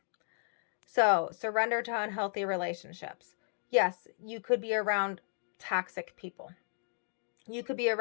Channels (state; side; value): silent; right; digital silence